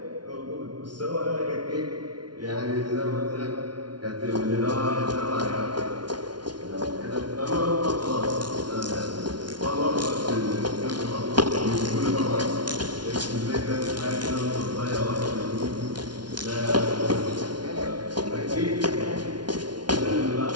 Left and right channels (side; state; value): left; late; 0.70 ms